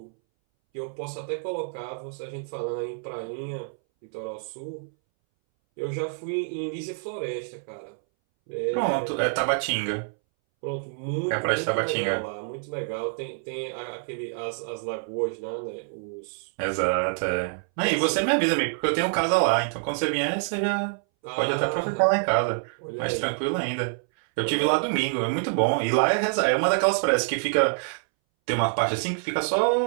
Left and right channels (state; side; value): silent; left; 60 dB below the other